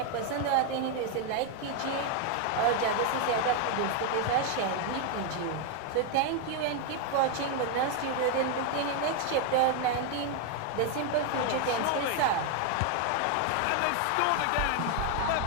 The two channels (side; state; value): both; different; correlation 0.01